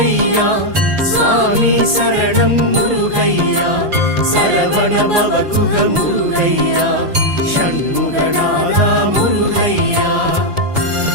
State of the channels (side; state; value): left; late; 5.7 ms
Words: சுவாமி சரணம் முருகையா, சரவண பவகுக முருகையா, ஷண்முகநாதா முருகையா.